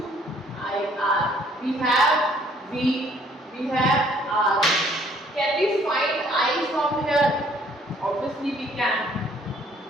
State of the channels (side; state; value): both; normal; correlation 0.61